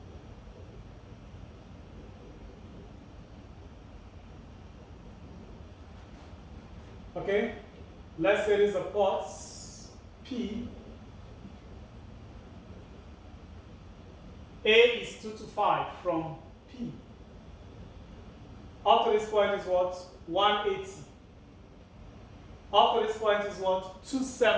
Okay, let's say this is a port P. A is 2 to 5 from P. Up to this point is what? 180. Up to this point is what?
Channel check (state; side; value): identical; both; correlation 1.00